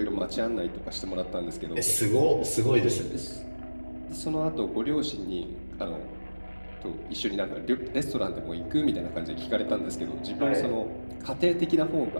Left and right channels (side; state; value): both; inverted; correlation -1.00